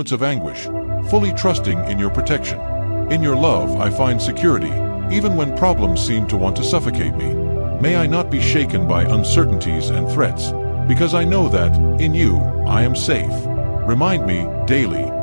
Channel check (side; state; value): both; inverted; correlation -1.00